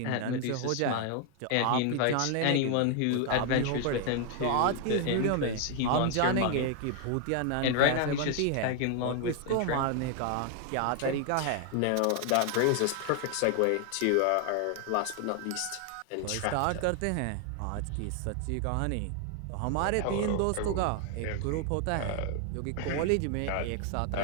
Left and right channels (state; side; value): different; both; correlation 0.00